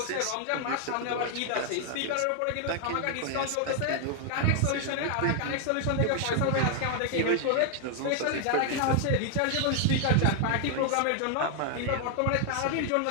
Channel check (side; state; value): both; different; correlation 0.00